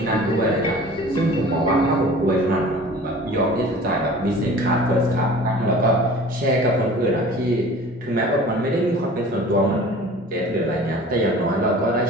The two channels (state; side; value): normal; both; correlation 0.44